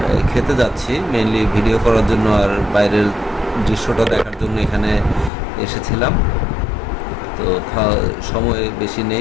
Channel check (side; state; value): right; drops out; at 5.3 s